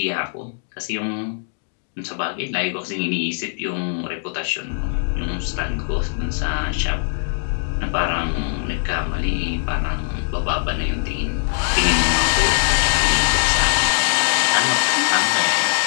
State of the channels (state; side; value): silent; right; digital silence